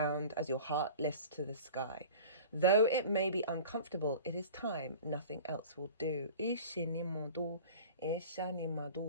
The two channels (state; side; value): inverted; both; correlation -0.39